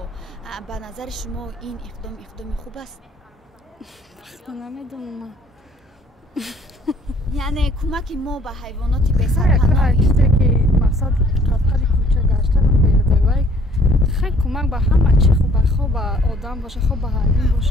به نظر شما این اقدام خوب است؟ نمیدونم. یعنی کمک ما به حیوانات بسرپناه مقصد قطعی کوچه گشتن بیاده وای خیلی کمک به همه چی خوب به آدم باشه خوب به حیوان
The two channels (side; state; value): both; normal; correlation 0.59